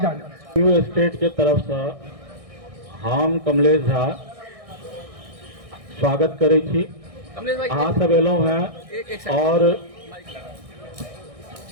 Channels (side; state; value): left; late; 1.6 ms